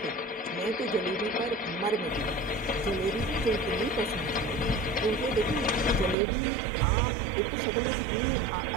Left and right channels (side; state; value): left; drops out; at 6.2 s